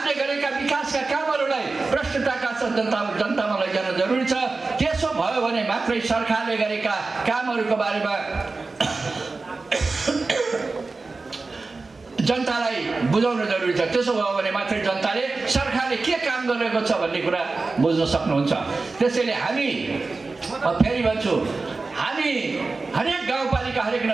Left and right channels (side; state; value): left; quieter; 3.8 dB